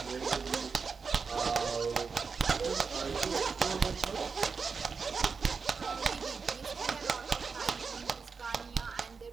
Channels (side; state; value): left; quieter; 5.2 dB